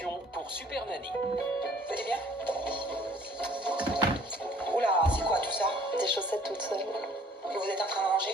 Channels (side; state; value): both; normal; correlation 0.55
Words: pour Super Nanny. Vous allez bien? Oula, c'est quoi tout ça? Des chaussettes toutes seules. Que vous êtes en train de